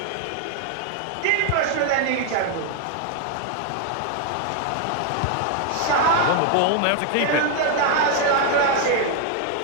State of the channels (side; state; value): both; different; correlation 0.00